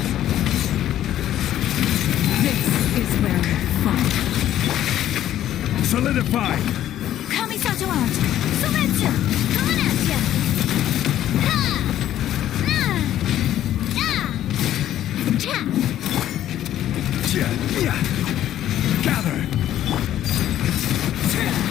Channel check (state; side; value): quieter; right; 12.1 dB